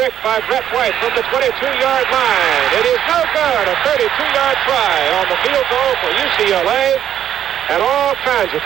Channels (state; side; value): quieter; left; 10.3 dB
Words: by Brett White from the 22-yard line. It is no good. A 32-yard try on the field goal for UCLA, and all kinds